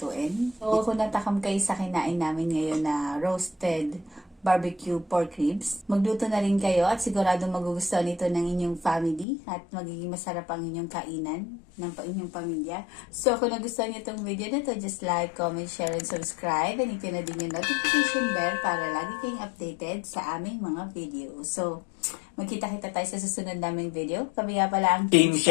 So, kung natakam kayo sa kinain namin ngayon na roasted barbecue pork ribs, magluto na rin kayo at sigurado magugustuhan ito ng inyong family at magiging masarap ang inyong kainan ng inyong pamilya. So, kung nagustuhan niyo itong video na to, just like, comment, share, and subscribe. And hit na din yung notification bell para lagi kayong updated sa aming mga video. So, magkita-kita tayo sa susunod naming video. Kami nga pala ang Team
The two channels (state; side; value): drops out; right; at 9.2 s